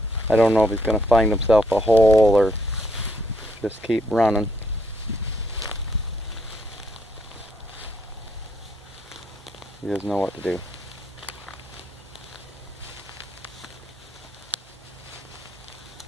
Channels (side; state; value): both; normal; correlation 0.72